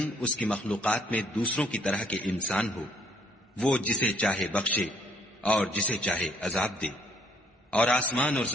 اس کی مخلوقات میں دوسروں کی طرح کے انسان ہو، وہ جسے چاہے بخشے اور جسے چاہے عذاب دے۔ اور آسمان اور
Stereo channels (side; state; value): both; normal; correlation 0.64